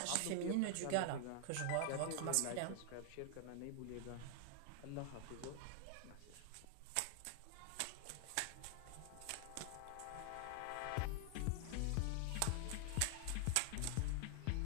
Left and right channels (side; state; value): both; different; correlation 0.00